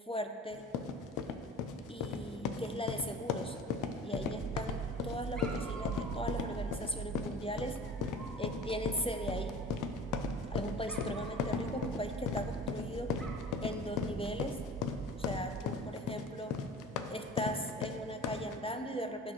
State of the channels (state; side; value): normal; both; correlation 0.40